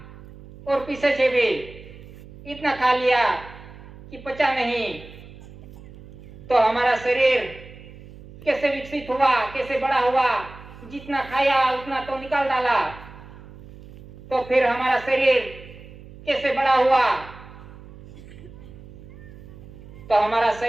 और पीछे से भी इतना खा लिया कि पचा नहीं। तो हमारा शरीर कैसे विकसित हुआ, कैसे बड़ा हुआ, जितना खाया उतना तो निकाल डाला। तो फिर हमारा शरीर कैसे बड़ा हुआ, तो हमारा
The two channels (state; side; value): noise; right; hum, 18 dB below the sound